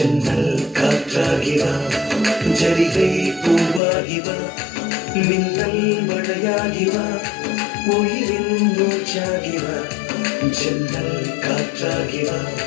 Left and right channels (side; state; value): right; drops out; at 3.8 s